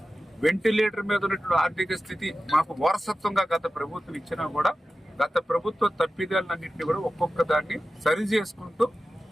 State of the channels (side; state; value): both; normal; correlation 0.94